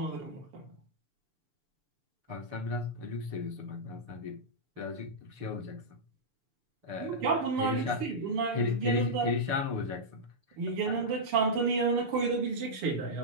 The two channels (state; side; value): late; left; 6.8 ms